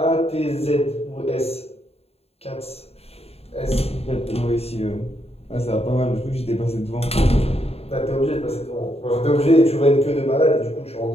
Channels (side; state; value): right; late; 0.29 ms